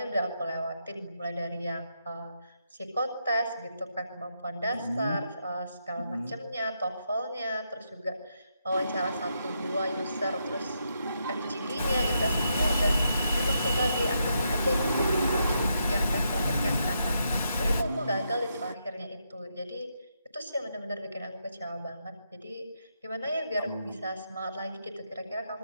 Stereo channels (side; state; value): both; inverted; correlation -0.80